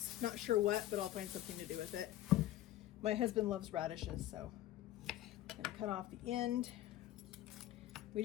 Not sure what, but I'll find something to do with it. My husband loves radishes, so I'm gonna cut off the end. We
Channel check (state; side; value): quieter; right; 14.1 dB